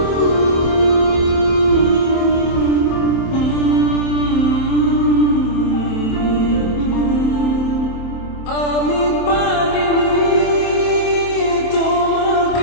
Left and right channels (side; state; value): right; late; 27 ms